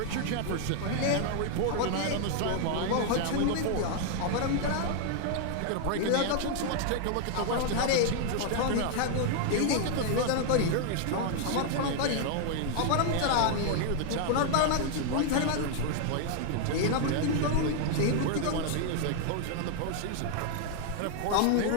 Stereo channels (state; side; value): different; both; correlation 0.00